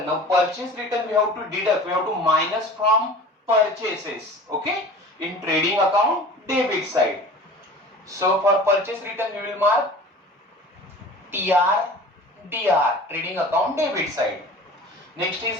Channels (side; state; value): both; normal; correlation 0.41